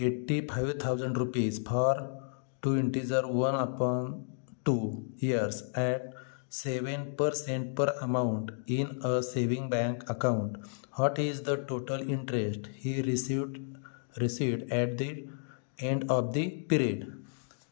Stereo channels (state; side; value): silent; right; digital silence